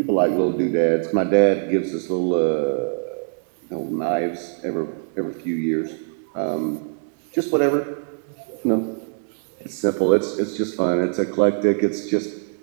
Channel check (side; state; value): left; silent; digital silence